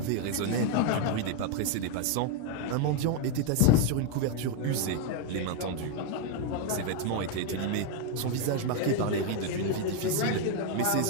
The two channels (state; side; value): different; both; correlation 0.01